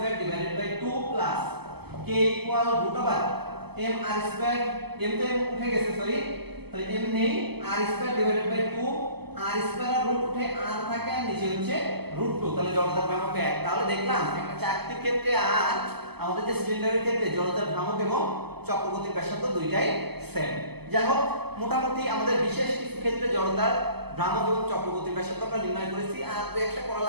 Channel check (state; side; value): late; left; 0.97 ms